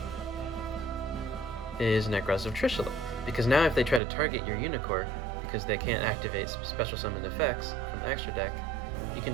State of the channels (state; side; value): drops out; left; at 4.0 s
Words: is Necroz of Trishula. Because now if they try to target your Unicorn, because they can't activate special summoned effects from the extra deck, you